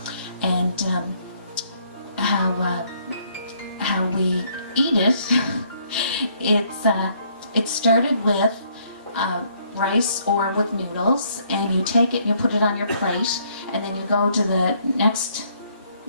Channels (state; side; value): inverted; both; correlation -0.67